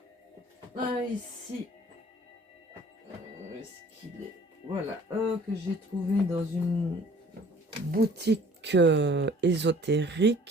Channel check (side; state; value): both; normal; correlation 0.52